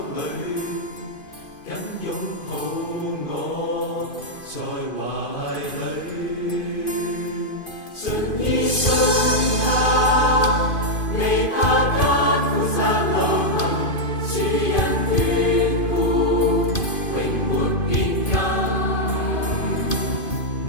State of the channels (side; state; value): right; late; 2.5 ms